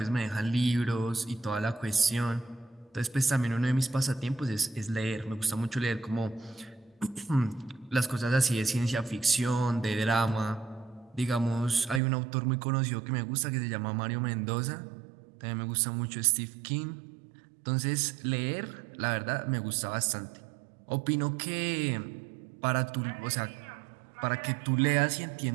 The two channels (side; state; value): left; drops out; at 12.0 s